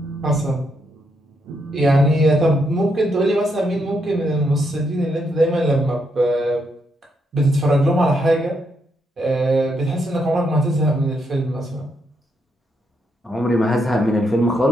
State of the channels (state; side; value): normal; both; correlation 0.78